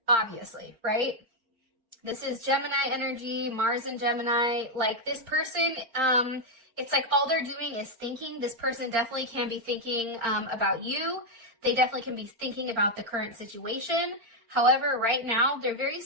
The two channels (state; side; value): late; left; 4.4 ms